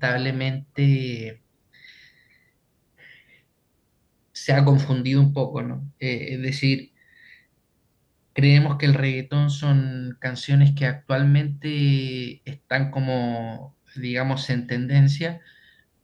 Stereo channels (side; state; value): both; identical; correlation 1.00